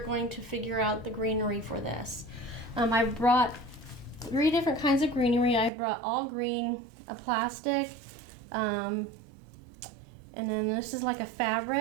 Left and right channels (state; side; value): drops out; left; at 5.7 s